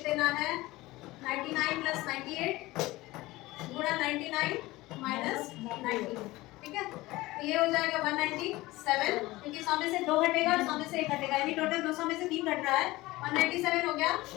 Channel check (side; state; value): right; quieter; 19.3 dB